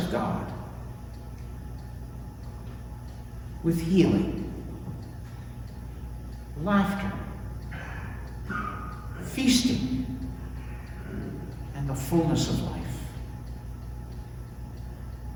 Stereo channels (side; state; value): both; identical; correlation 1.00